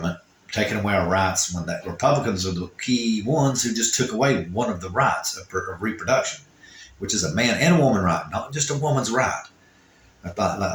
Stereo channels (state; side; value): identical; both; correlation 1.00